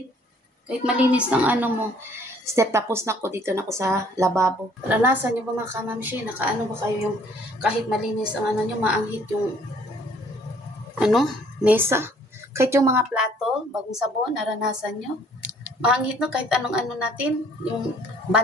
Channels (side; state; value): both; normal; correlation 0.59